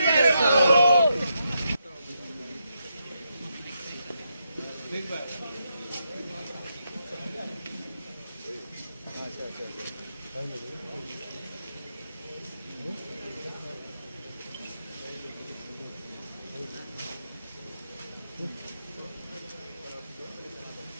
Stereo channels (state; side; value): inverted; both; correlation -0.82